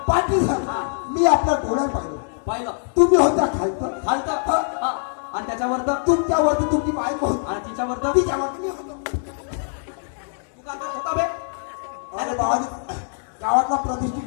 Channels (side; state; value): right; silent; digital silence